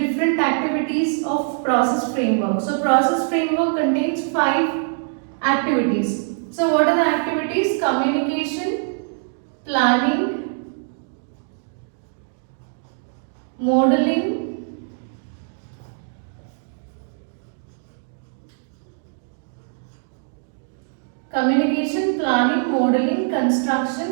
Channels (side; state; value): left; silent; 64 dB below the other